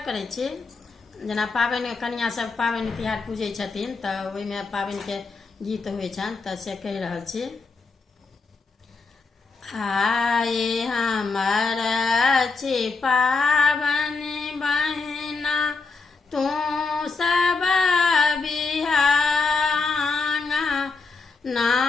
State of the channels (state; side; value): quieter; right; 4.2 dB